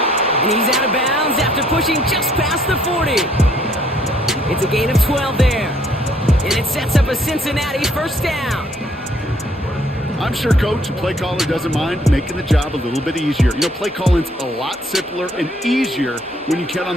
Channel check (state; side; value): normal; both; correlation 0.64